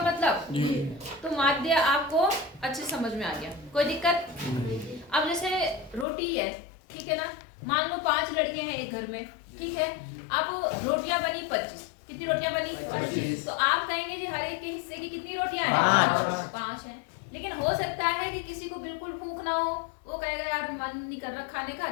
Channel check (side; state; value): right; drops out; at 6.1 s